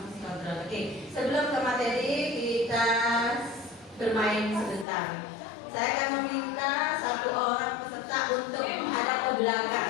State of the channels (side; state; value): right; drops out; at 4.9 s